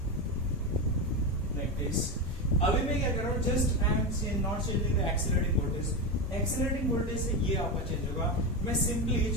लाइक दिस। अभी मैं क्या कर रहा हूँ, just I am not changing the accelerating voltage, accelerating voltage से ये आपका चेंज होगा। मैं सिंपली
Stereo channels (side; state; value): both; normal; correlation 0.16